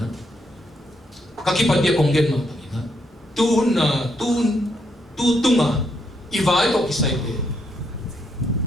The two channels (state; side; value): normal; both; correlation 0.76